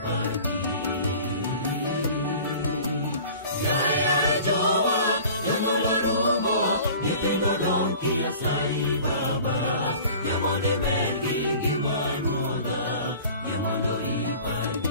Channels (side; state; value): both; inverted; correlation -0.43